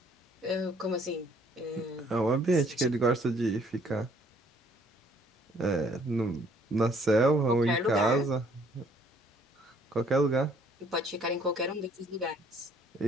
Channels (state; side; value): normal; both; correlation 0.62